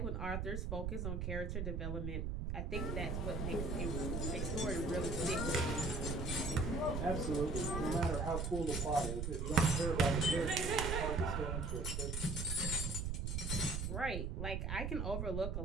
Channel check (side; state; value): right; noise; rumble, 1 dB below the sound